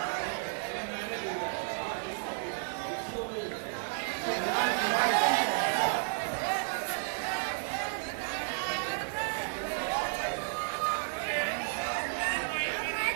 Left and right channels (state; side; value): silent; left; digital silence